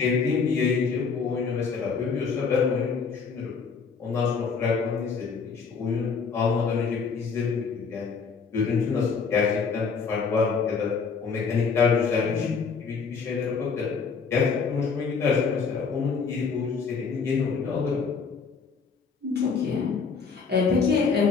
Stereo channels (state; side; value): quieter; right; 5.4 dB